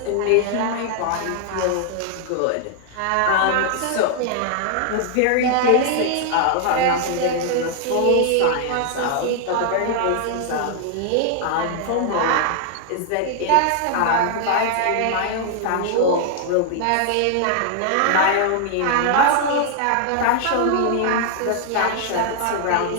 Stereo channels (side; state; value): both; different; correlation 0.00